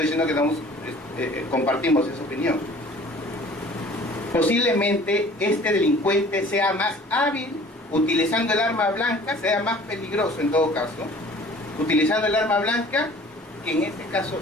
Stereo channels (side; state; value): both; normal; correlation 0.49